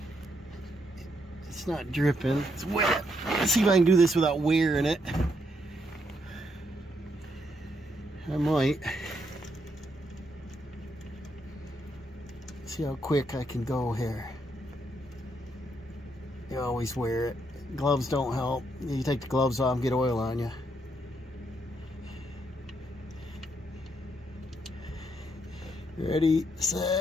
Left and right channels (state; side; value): normal; both; correlation 0.76